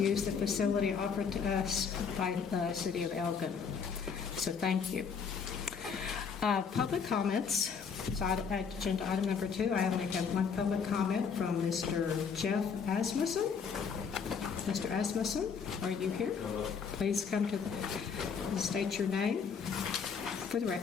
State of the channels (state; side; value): quieter; right; 6.2 dB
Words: the facility offered to us by the City of Elgin. So thank you. Public comments. So agenda item number 2, I only have one public comment from Mr. Jeff Asmussen. Mr. Asmussen, are you here? Hello. Please come to state your name for the